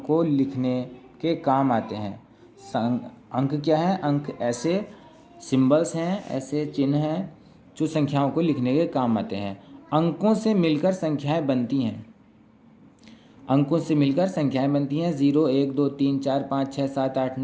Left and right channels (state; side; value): identical; both; correlation 1.00